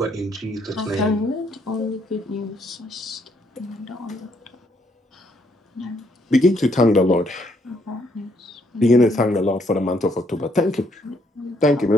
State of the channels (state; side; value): normal; both; correlation 0.71